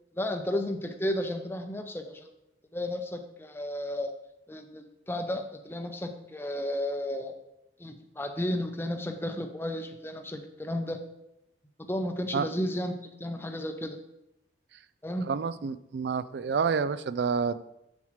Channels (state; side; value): normal; both; correlation 0.42